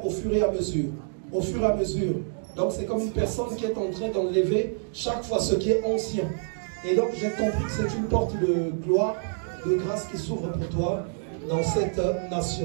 au fur et à mesure. Au fur et à mesure. Donc c'est comme une personne qui est en train d'enlever chaque fois ce qui est ancien. Et donc j'ai compris que c'est une porte de gloire, de grâce qui s'ouvre pour toi dans cette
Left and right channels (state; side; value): silent; left; digital silence